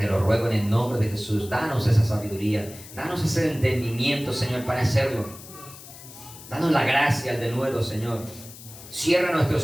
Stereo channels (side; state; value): left; noise; hiss, 17 dB below the sound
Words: lo ruego en el nombre de Jesús. Danos esa sabiduría, danos ese entendimiento, Señor, para hacerlo. Danos la gracia al denuedo, Señor. Cierra